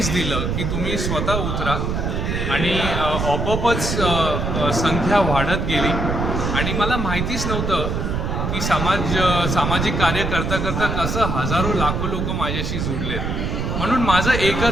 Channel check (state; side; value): noise; right; rumble, 1 dB below the sound